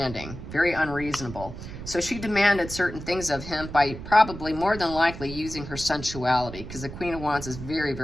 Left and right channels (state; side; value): noise; right; rumble, 11 dB below the sound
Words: very unreasonable. So she demanded certain things of him by probably more than likely using her sensuality, because the Queen of Wands is very,